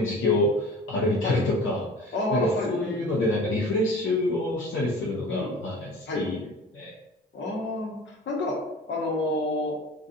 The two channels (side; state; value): both; normal; correlation 0.41